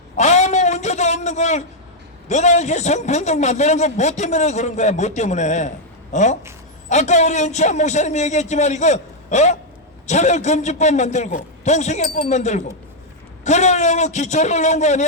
아무 문제도 없는 걸 너나 이렇게 성평등 만드는 거 뭐 때문에 그런 거야? 뭐 때문에? 아까 우리 은치한 목사님이 얘기했지만 이거 차별금지법 만들고 동성애법 만들고 그러려고 기초를 놓은 거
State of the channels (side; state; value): both; normal; correlation -0.02